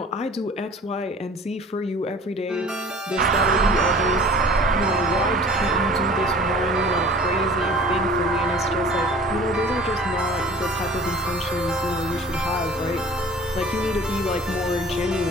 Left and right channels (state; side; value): normal; both; correlation 0.46